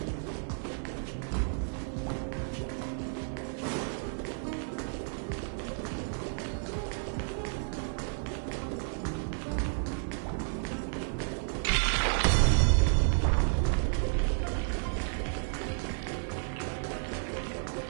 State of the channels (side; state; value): left; silent; 56 dB below the other